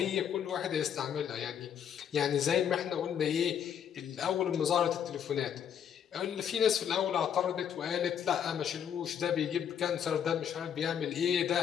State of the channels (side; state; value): right; quieter; 8.7 dB